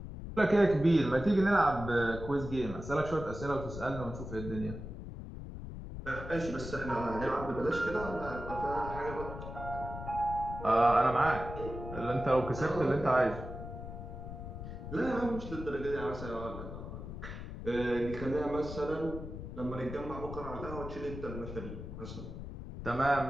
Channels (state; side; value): noise; left; rumble, 9 dB below the sound